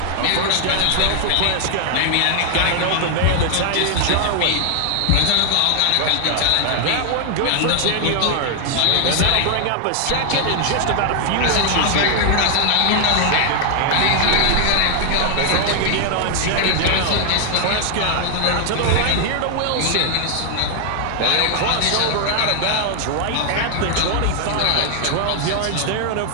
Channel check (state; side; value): different; both; correlation 0.00